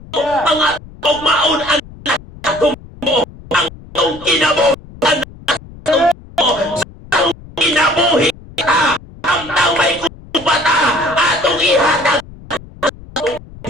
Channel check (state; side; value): noise; left; rumble, 19 dB below the sound